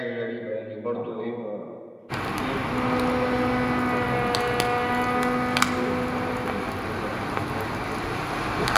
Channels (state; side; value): identical; both; correlation 1.00